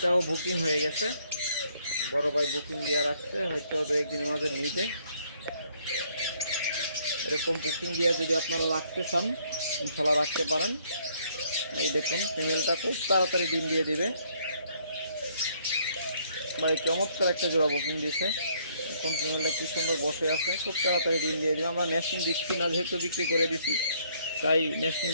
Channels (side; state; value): both; inverted; correlation -0.66